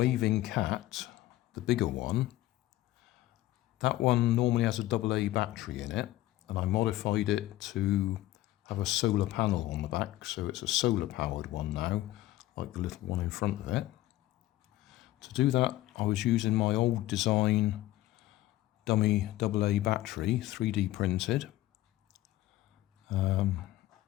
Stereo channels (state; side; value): quieter; right; 15.8 dB